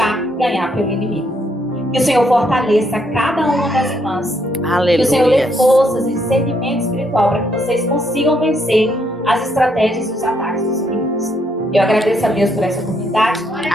ganhar pelo inimigo. Que o Senhor fortaleça cada uma das irmãs. Aleluia. Que o Senhor dê forças e discernimento espiritual para que vocês consigam vencer as estratégias e os ataques dos inimigos. Eu agradeço a Deus por essa oportunidade.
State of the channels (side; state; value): both; normal; correlation 0.74